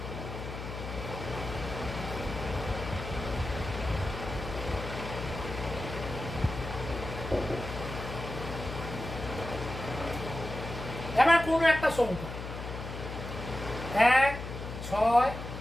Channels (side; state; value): left; noise; hum, 8 dB below the sound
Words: এবার কোনো একটা সংখ্যা 1, 6,